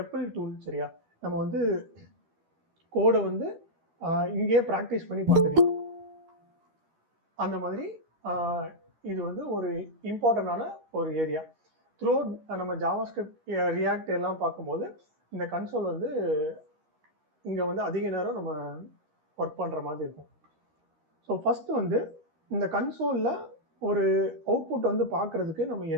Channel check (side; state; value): left; late; 13 ms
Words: டூல். சரியா? நம்ம வந்து கோடை வந்து இங்கேயே ப்ராக்டிஸ் பண்ணி பார்த்துக்கலாம். அந்த மாதிரி இது வந்து ஒரு இம்பார்ட்டண்டான ஒரு ஏரியா. த்ரூ நம்ம ஜாவா ஸ்கிரிப்ட் ரியாக்ட் எல்லாம் பார்க்கும்போது இந்த கன்சோல் வந்து இங்கே வந்து அதிக நேரம் நம்ம ஒர்க் பண்ணுற மாதிரி இருக்கும். ஸோ ஃபஸ்ட்டு வந்து இந்த கன்சோலில் ஒரு அவுட்புட் வந்து பார்க்குறதுக்கு நம்ம